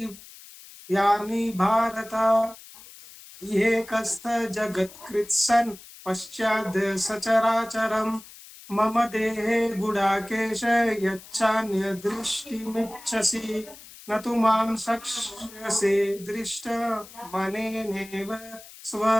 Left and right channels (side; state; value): left; noise; hiss, 19 dB below the sound